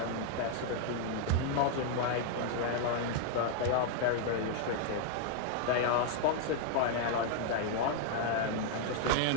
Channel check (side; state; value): both; different; correlation 0.00